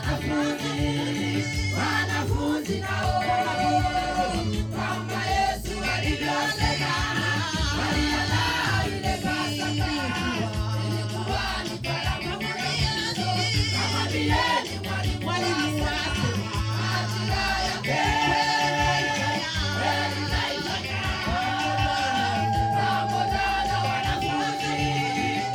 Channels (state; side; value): identical; both; correlation 1.00